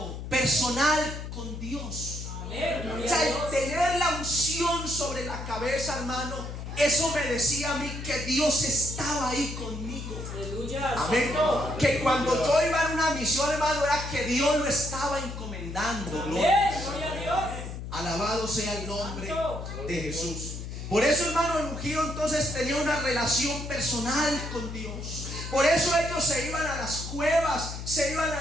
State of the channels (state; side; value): noise; left; hum, 8 dB below the sound